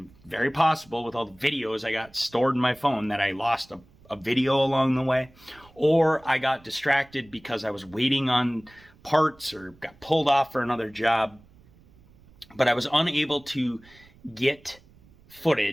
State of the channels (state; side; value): noise; right; rumble, 27 dB below the sound